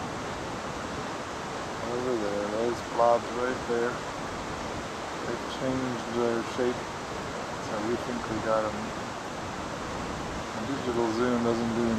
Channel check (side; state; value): both; identical; correlation 1.00